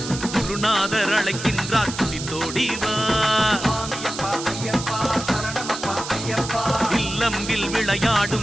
குருநாதர் அழைக்கின்றார் துடித்தோடிவா இல்லம்பில்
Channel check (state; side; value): noise; right; hiss, 9 dB below the sound